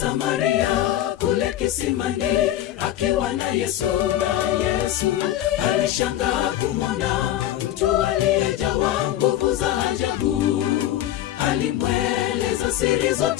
kule kisimani, akiwa na Yesu alishangaa kumwona mtu aliyejawa nguvu za ajabu. Alimweleza siri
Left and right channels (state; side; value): quieter; right; 13.0 dB